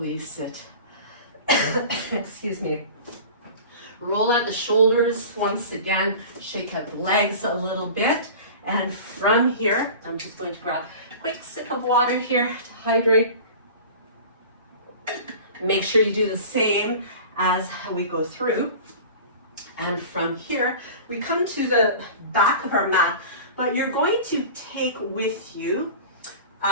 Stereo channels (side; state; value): both; inverted; correlation -0.38